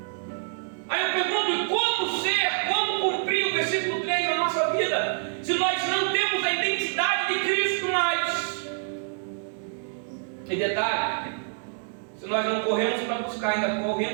Aí eu pergunto, como cumprir o versículo 3 na nossa vida, se nós não temos a identidade de Cristo mais? E detalhe, se nós não corremos para buscar, ainda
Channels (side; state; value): left; silent; 60 dB below the other